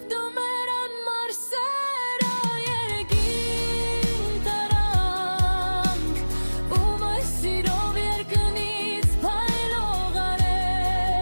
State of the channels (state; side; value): inverted; both; correlation -1.00